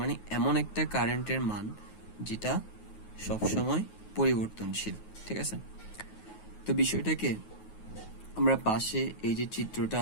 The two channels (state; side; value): late; right; 9.4 ms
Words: এমন একটা কারেন্টের মান যেটা সবসময় পরিবর্তনশীল। ঠিক আছে, তো বিষয়টাকে আমরা পাশে এই যে চিত্রটা